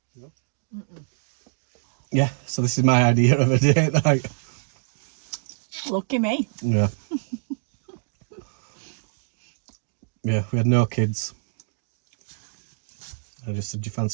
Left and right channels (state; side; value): silent; left; digital silence